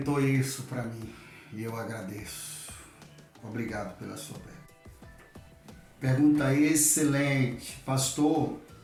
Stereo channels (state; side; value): identical; both; correlation 1.00